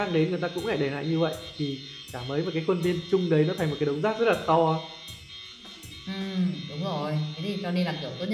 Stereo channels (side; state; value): both; identical; correlation 1.00